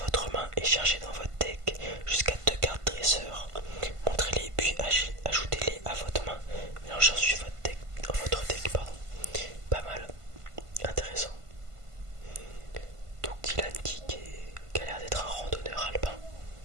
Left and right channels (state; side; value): late; left; 1.5 ms